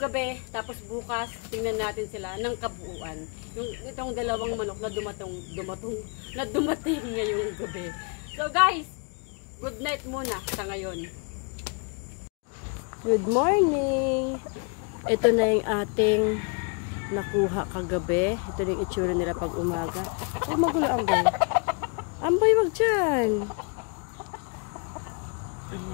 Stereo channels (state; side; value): quieter; right; 36.6 dB